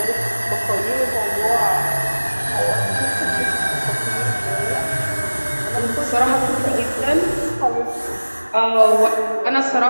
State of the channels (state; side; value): inverted; both; correlation -1.00